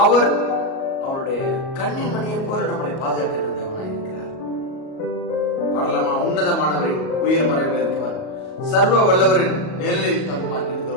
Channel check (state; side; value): late; right; 37 ms